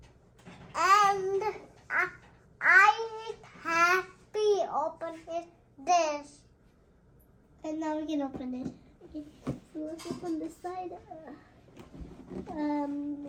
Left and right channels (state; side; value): identical; both; correlation 1.00